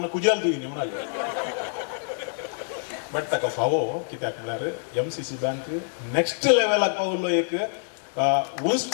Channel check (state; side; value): silent; right; 61 dB below the other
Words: कुजाल तुयें म्हणाले. बट ताका फावो कित्याक म्हळ्यार MCC बँक नेक्स्ट लेवलाक पावलो. एक